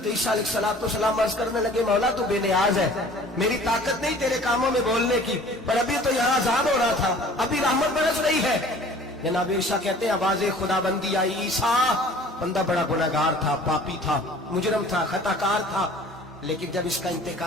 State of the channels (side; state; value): both; normal; correlation 0.48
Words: ईसा अलैहिस्सलाम अर्ज करने लगे, मौला तू बेनियाज है, मेरी ताकत नहीं तेरे कामों में बोलने की, पर अभी तो यहाँ अजाब हो रहा था, अभी रहमत बरस रही है। जनाब ईसा कहते हैं, आवाज़े खुदाबंदी आई, ईसा बंदा बड़ा गुनहगार था, पापी था, मुजरम था, खताकार था, लेकिन जब इसका